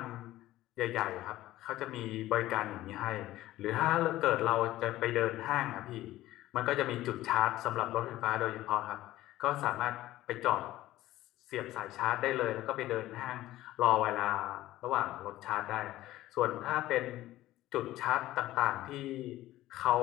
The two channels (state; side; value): quieter; right; 15.5 dB